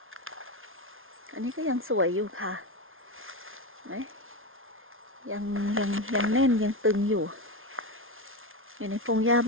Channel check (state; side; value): late; left; 0.60 ms